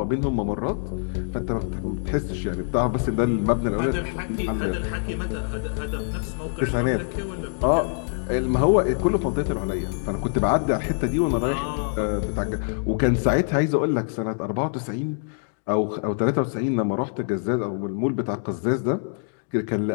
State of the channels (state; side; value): silent; right; digital silence